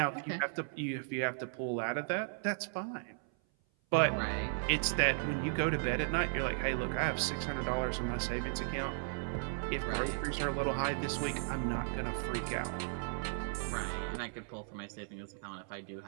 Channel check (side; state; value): left; silent; 54 dB below the other